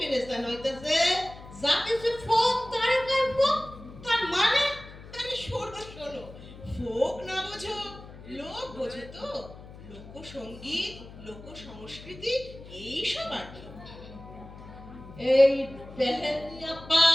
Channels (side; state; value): left; noise; hum, 16 dB below the sound